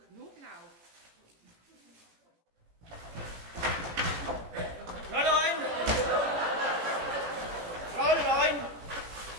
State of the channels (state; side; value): late; left; 18 ms